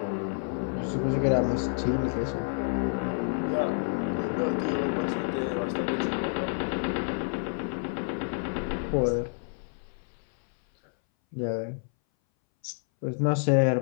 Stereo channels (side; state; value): right; silent; 59 dB below the other